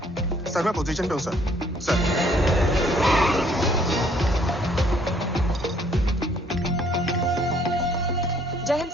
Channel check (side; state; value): both; normal; correlation 0.62